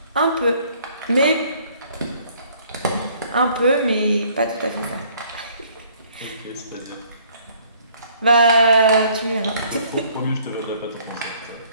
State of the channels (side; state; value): both; inverted; correlation -0.60